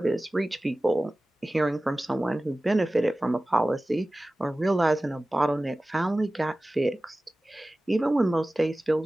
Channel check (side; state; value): both; normal; correlation 0.97